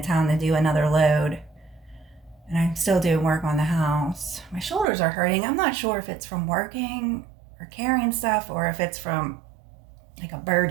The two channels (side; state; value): left; drops out; at 4.9 s